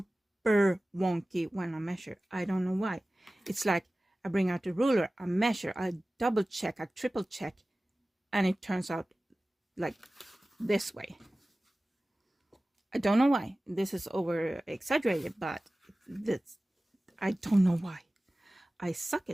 wonky when I measure. I don't know why. It's like I bring out the ruler, I measure, I double check, I triple check, and it turns out like this way. I don't know why. This is over exaggerated, but this, I don't know why. I suck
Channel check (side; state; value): both; normal; correlation 0.97